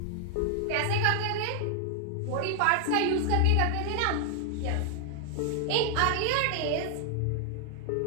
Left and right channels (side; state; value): both; different; correlation 0.00